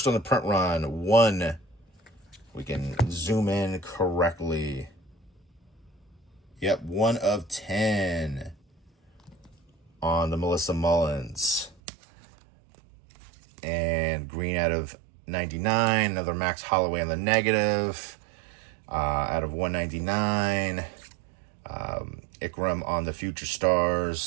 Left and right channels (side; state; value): left; drops out; at 11.8 s